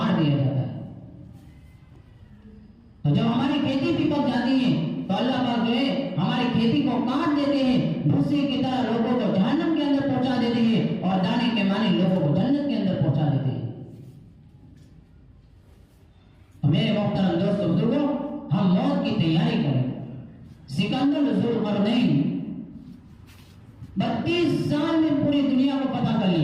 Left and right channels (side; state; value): both; identical; correlation 1.00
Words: دیا جاتا ہے. تو جب ہماری کھیتی بھی پک جاتی ہے تو اللہ پاک جو ہے ہماری کھیتی کو کاٹ دیتے ہیں, بھوسے کی طرح لوگوں کو جہنم کے اندر پہنچا دیتے ہیں اور دانے کے معنی لوگوں کو جنت کے اندر پہنچا دیتے ہیں. تو میرے محترم دوستوں بزرگوں ہم موت کی تیاری کریں. سکندر ذوالقرنین 32 سال میں پوری دنیا کو پتہ کر